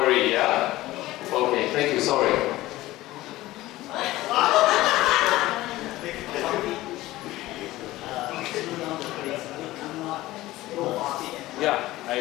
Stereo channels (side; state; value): right; quieter; 17.2 dB